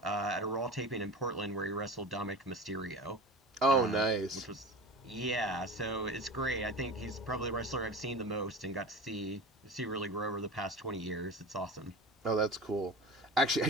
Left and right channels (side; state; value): both; normal; correlation 0.32